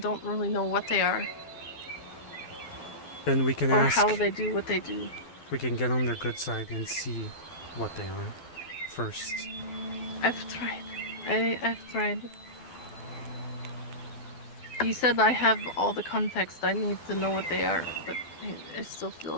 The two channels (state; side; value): late; right; 12 ms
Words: really know what they are. Then we can or ask. how they do what they do. We can get on their good side and see what they are first. I've tried. I've tried. He said I have all the context I need to know what they are, but I still feel